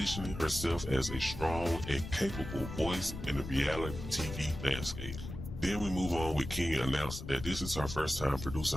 herself as a strong and capable voice in the reality TV landscape. Then we move on with Kenya announcing that this is her first time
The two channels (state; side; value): noise; left; rumble, 8 dB below the sound